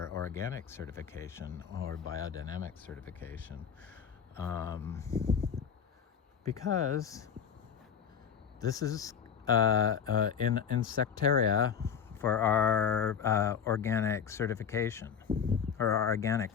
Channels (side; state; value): right; quieter; 7.5 dB